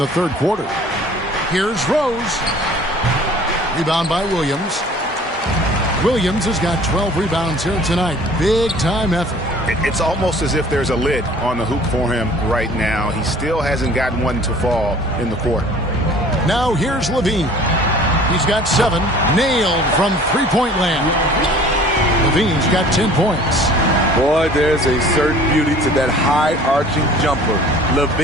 third quarter. Here's Rose. Rebound by Williams. Williams has got 12 rebounds here tonight. Big time effort. It's almost as if there's a lid on the hoop for him right now. He still hasn't gotten one to fall in the court. Now here's Levine. He's got 7. Nailed from three-point land. Levine's got 10 points. Boy, there's a certain beauty to that high-arching jumper.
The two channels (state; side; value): normal; both; correlation 0.49